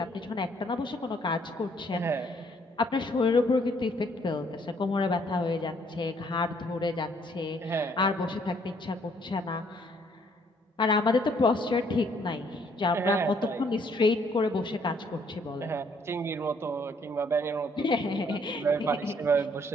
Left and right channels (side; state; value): both; normal; correlation 0.66